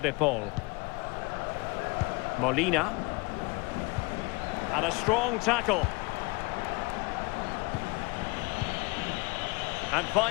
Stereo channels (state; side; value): quieter; right; 25.6 dB